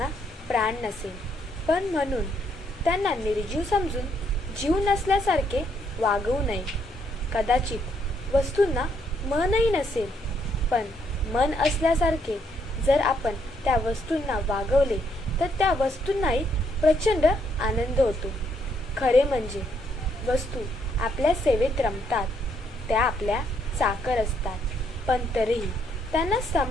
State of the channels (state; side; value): normal; both; correlation 0.72